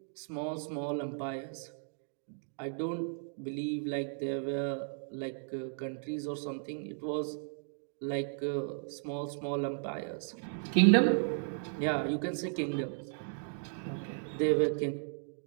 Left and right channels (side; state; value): left; silent; digital silence